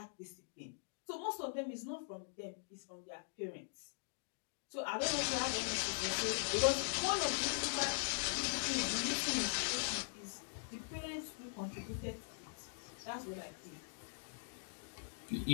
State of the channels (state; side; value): silent; right; digital silence